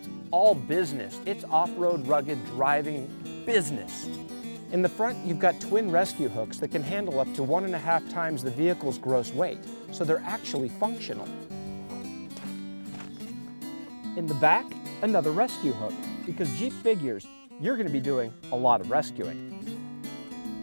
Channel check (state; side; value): inverted; both; correlation -1.00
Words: all business. It's off-road rugged driving business. In the front, you've got twin rescue hooks that can handle up to 1.5 times the vehicle's gross weight, so they're actually functional. In the back, another rescue hook, because Jeep figures you're going to be doing a lot of rescuing.